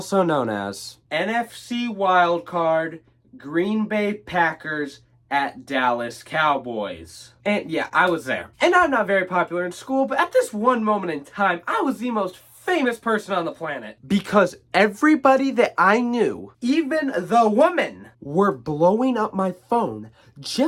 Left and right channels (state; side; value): identical; both; correlation 1.00